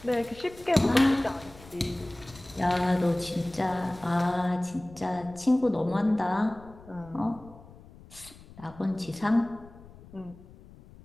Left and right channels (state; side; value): noise; left; rumble, 21 dB below the sound